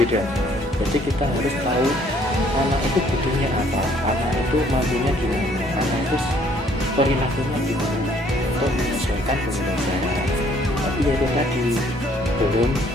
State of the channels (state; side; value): normal; both; correlation 0.62